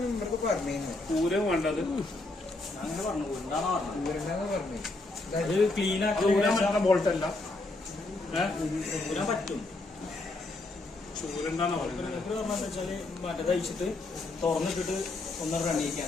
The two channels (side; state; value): right; quieter; 3.1 dB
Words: പറഞ്ഞു. പൂരം വേണ്ടത് അങ്ങനെ പറഞ്ഞു പറഞ്ഞു അത് ക്ലീൻ ആക്കി ബോൾട്ടല്ല പറ്റും. ചൂരെന്താന്ന് പറയുന്നത് പറഞ്ഞാന്ന് വെച്ചാല് മറ്റേത് അയച്ചിട്ട് തുറന്നിട്ടിട്ട് ഒന്ന്